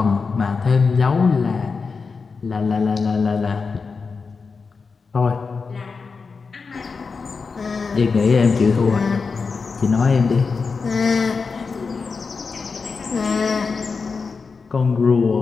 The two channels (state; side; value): quieter; right; 4.8 dB